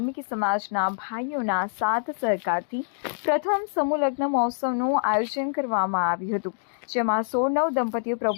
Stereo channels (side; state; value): right; silent; digital silence